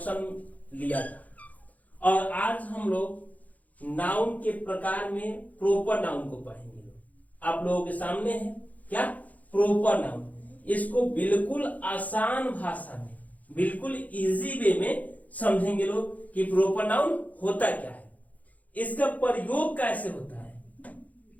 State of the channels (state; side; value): late; right; 0.075 ms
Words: लिया था। और आज हम लोग नाउन के प्रकार में प्रोपर नाउन को पढ़ेंगे। आप लोगों के सामने है क्या प्रोपर नाउन। इसको बिल्कुल आसान भाषा में, बिल्कुल इजी वे में समझेंगे लोग कि प्रोपर नाउन होता क्या है, इसका प्रयोग कैसे होता है,